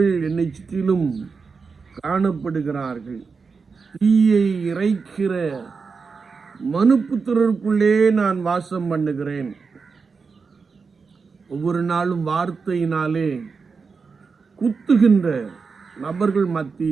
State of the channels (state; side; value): quieter; left; 5.0 dB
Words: என்னை சுற்றிலும் காணப்படுகிறார்கள். தீயை இறைக்கிற மனுப்புத்திரருக்குள்ளே நான் வாசம் பண்ணுகிறேன். ஒவ்வொரு நாளும் வார்த்தையினாலே குத்துகின்ற நபர்கள்